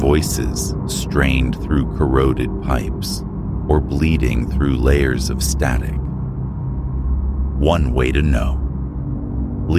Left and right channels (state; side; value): identical; both; correlation 1.00